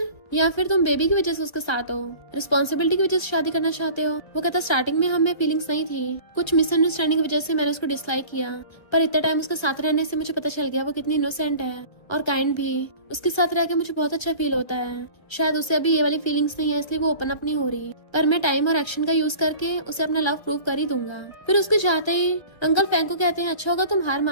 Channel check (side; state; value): right; late; 1.4 ms